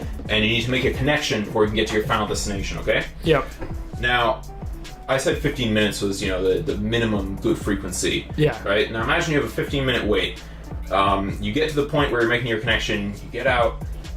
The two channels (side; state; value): both; identical; correlation 1.00